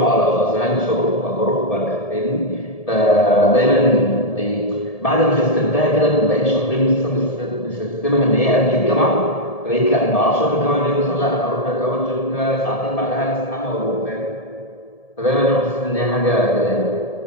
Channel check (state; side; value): late; right; 1.7 ms